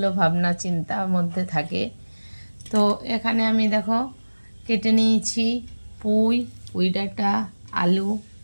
ভাবনা চিন্তার মধ্যে থাকে। তো এখানে আমি দেখো কেটে নিয়েছি পুঁই ডাঁটা, আলু,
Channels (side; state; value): both; inverted; correlation -1.00